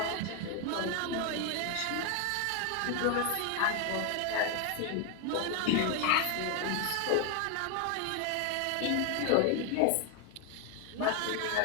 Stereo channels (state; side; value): different; both; correlation 0.01